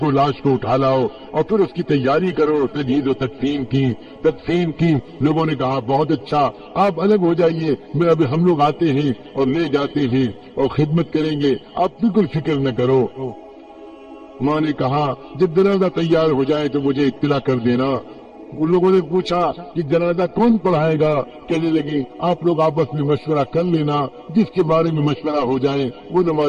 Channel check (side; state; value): both; identical; correlation 1.00